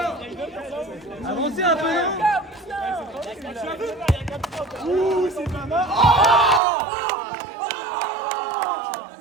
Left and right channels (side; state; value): left; drops out; at 6.6 s